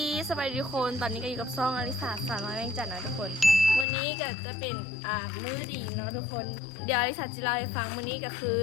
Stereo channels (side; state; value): right; drops out; at 3.9 s